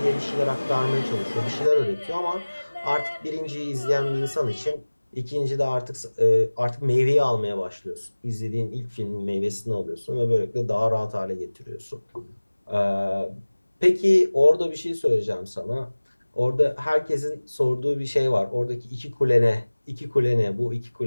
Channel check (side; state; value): both; inverted; correlation -1.00